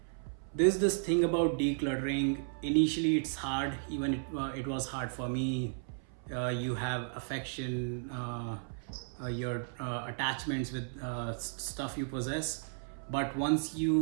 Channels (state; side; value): silent; left; 55 dB below the other